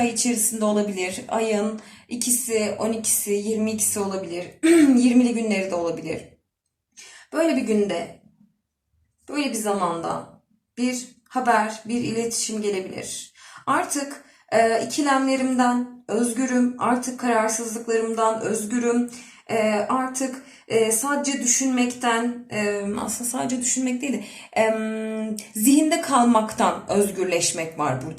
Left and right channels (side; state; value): both; identical; correlation 1.00